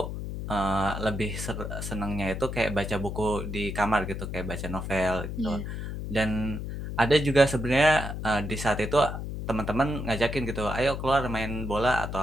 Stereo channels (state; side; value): noise; left; hum, 6 dB below the sound